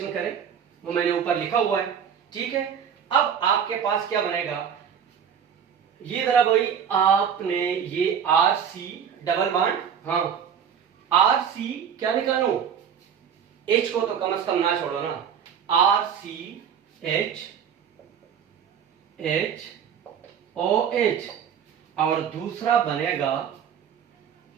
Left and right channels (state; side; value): quieter; left; 7.9 dB